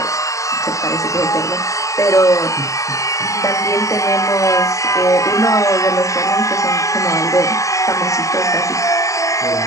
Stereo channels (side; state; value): right; late; 0.16 ms